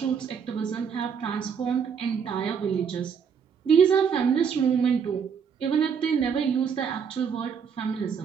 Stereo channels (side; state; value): left; quieter; 6.8 dB